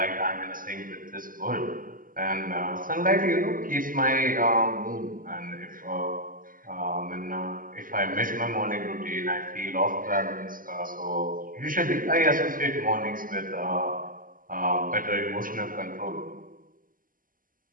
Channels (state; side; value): late; left; 0.40 ms